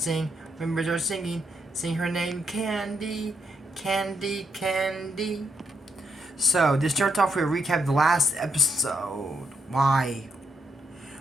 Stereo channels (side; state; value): both; normal; correlation 0.79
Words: when birds are singing. Sing her name, Candy. Candy, Candy. So, this starts off with a recap of the last episode. Why?